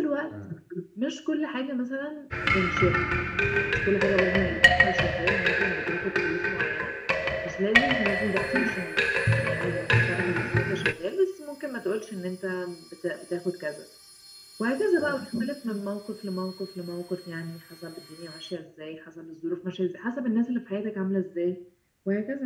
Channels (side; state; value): both; identical; correlation 1.00